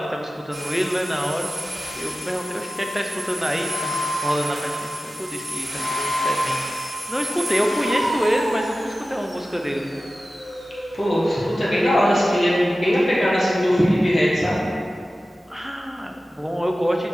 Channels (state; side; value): normal; both; correlation 0.95